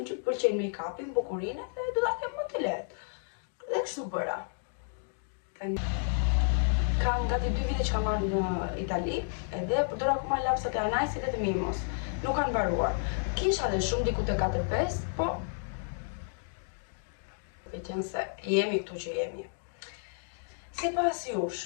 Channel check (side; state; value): right; silent; digital silence